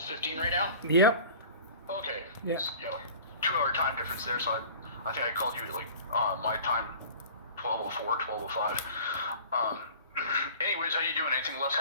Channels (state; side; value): inverted; both; correlation -0.42